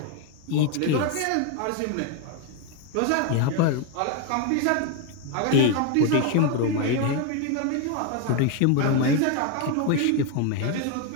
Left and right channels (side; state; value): both; different; correlation 0.01